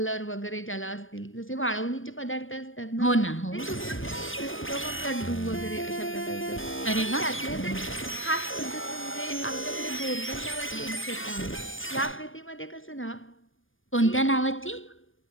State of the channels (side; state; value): right; late; 0.58 ms